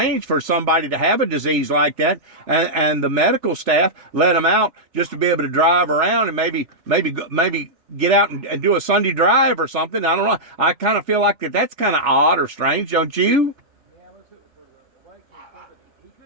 for somebody to have a disease like that, and the medical staff let him out just to be able to drive around and maybe get out and do a Sunday drive or something. I don't know. I kind of feel like that's kind of odd or strange, don't you? Yeah, let's hit it for the right case.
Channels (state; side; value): late; left; 3.5 ms